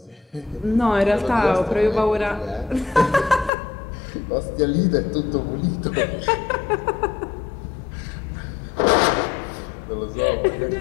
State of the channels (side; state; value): right; drops out; at 3.5 s